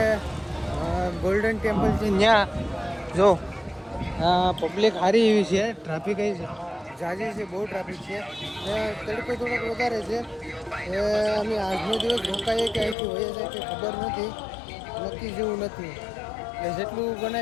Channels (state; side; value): drops out; right; at 13.0 s